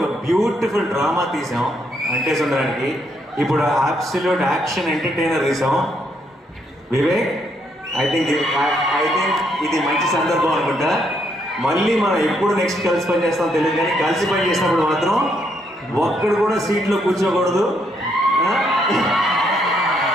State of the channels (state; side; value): normal; both; correlation 0.74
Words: బ్యూటిఫుల్ డ్రామా తీసాం అంటే సుందరానికి. ఇప్పుడు అబ్సల్యూట్ యాక్షన్ ఎంటర్టైనర్ తీసాం. వివేక్ ఐ థింక్ ఇది మంచి సందర్భం అనుకుంటా. మళ్ళీ మనం ఎప్పుడు నెక్స్ట్ కలిసి పని చేస్తాం తెలియదు, కానీ కలిసి పని చేసినప్పుడు మాత్రం ఒక్కడు కూడా సీట్లో కూర్చోకూడదు.